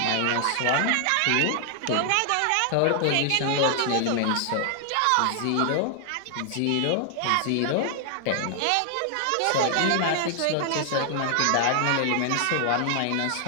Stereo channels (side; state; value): both; different; correlation 0.00